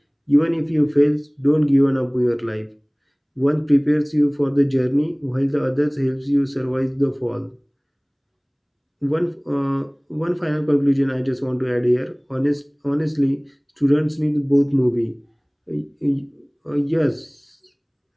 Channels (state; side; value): identical; both; correlation 1.00